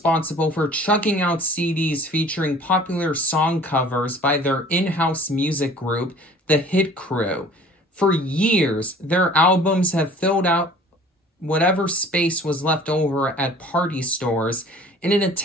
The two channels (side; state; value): both; normal; correlation 0.48